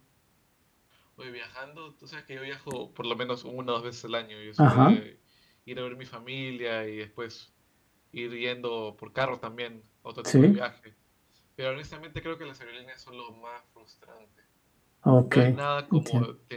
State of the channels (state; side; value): identical; both; correlation 1.00